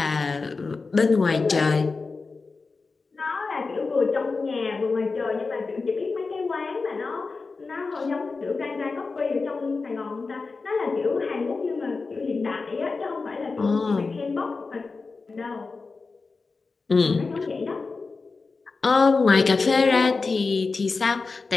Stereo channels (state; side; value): quieter; right; 4.2 dB